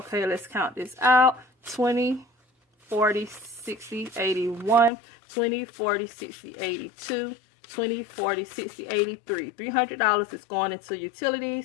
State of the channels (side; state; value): right; drops out; at 4.9 s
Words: let's count this out. 20, 40, 60, 81, 20, 40, 60, 82, 20, 40, 60, 83. $300 is going into